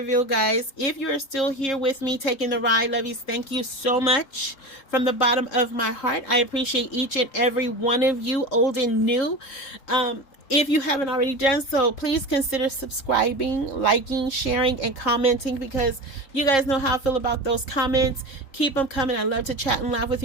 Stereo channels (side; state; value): right; late; 3.7 ms